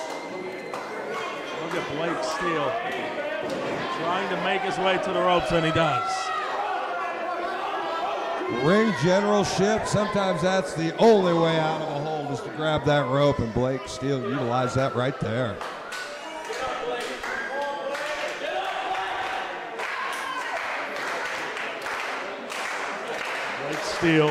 Look at Blake Steele trying to make his way to the ropes, and he does. Ring generalship, sometimes that's the only way out of a hold is to grab that rope, and Blake Steele utilized that right there. Blake Steele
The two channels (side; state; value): both; identical; correlation 1.00